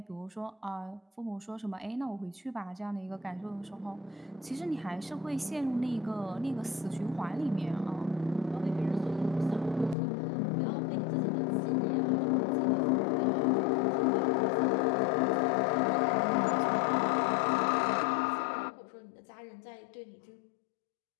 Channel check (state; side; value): drops out; right; at 10.0 s